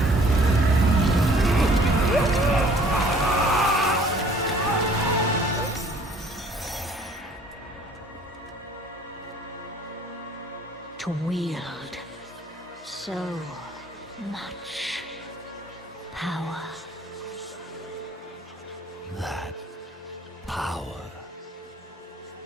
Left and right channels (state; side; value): normal; both; correlation 0.56